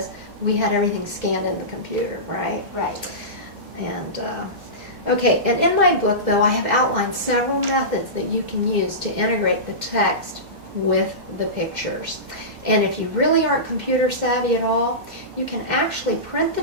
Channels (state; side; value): normal; both; correlation -0.20